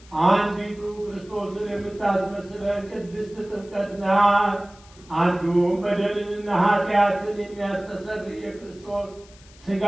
አንዲቱ ክርስቶስን የምታስመስለን ቅድስት ጥምቀት ናት። አንዱም በደልንና ኃጢአትን የሚያስተሰርይ የክርስቶስ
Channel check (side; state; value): left; noise; hiss, 25 dB below the sound